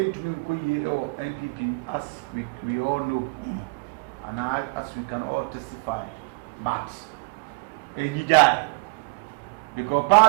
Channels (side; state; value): left; quieter; 31.8 dB